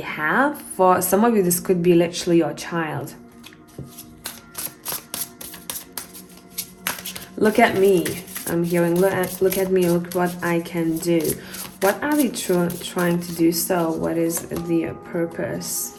For some of you, this could be literally your child. Look at me. I'm hearing, look at me, look what I can do. What are they trying to do so? What is the purpose?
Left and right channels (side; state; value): both; identical; correlation 1.00